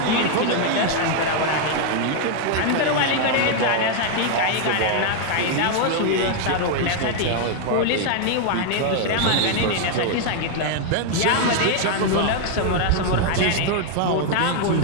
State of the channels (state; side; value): different; both; correlation 0.00